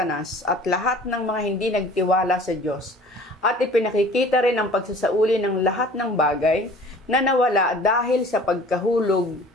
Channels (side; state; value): both; normal; correlation 0.47